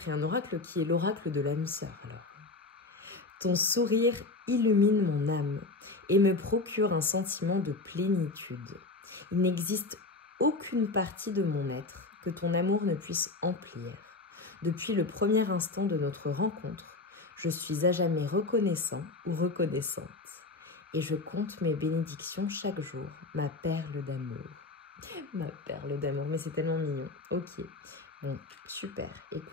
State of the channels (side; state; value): right; quieter; 3.5 dB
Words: un oracle qui est l'oracle de l'âme sœur. Alors, ton sourire illumine mon âme et me procure un sentiment de plénitude. Il n'existe aucune partie de mon être que ton amour ne puisse emplir. Depuis le premier instant de notre rencontre, je suis à jamais reconnaissant ou reconnaissante. Et je compte mes bénédictions chaque jour, ma perle d'amour. Ma perle d'amour, mais c'est tellement mignon. Ok, bon, super,